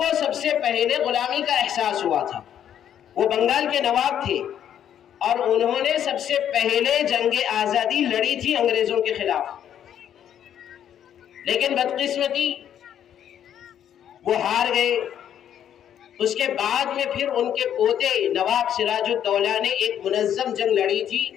سب سے پہلے غلامی کا احساس ہوا تھا. وہ بنگال کے نواب تھے اور انہوں نے سب سے پہلے جنگ آزادی لڑی تھی انگریزوں کے خلاف. لیکن بدقسمتی وہ ہار گئے. اس کے بعد میں پھر ان کے پوتے نواب سراج الدولہ نے ایک منظم جنگ لڑی تھی،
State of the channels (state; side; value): quieter; right; 9.8 dB